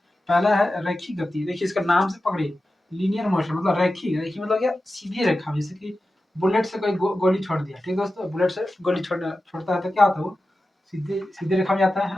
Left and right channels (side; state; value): both; normal; correlation 0.93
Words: पहला है रेखी गति। देखिए इसका नाम से पकड़िए, लीनियर मोशन, मतलब रेखी। रेखी मतलब क्या? सीधी रेखा। जैसे कि बुलेट से कोई गोली छोड़ दिया, ठीक है दोस्तों? बुलेट से गोली छोड़ता है तो क्या होता है? वो सीधे सीधे रेखा में जाता है